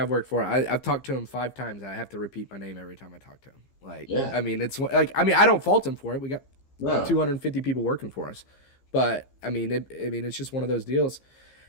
worked for. I've talked to him 5 times. I have to repeat my name every time I talk to him. Like, Yeah, I mean, it's like I mean, I don't fault him for it. We got no, 250 people working for us, but I mean, it's just one of those deals.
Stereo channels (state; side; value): late; right; 15 ms